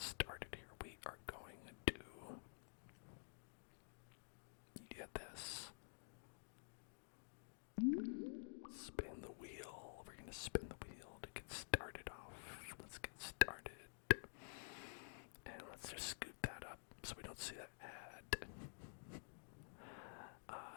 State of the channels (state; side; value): silent; right; digital silence